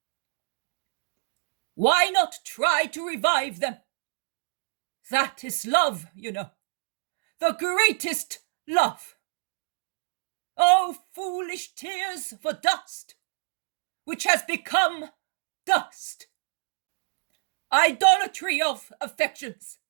Why not try to revive them? That is love, you know, the greatest love. Oh, foolish tears for dust, which has become dust. Idolatry of affections,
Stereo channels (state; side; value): silent; left; digital silence